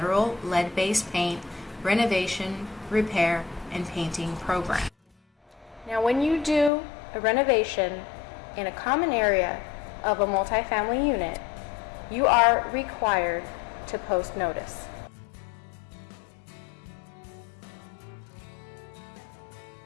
lead-based paint renovation, repair, and painting program. Now, when you do a renovation in a common area of a multifamily unit, you are required to post notice.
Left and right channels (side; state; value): right; drops out; at 6.7 s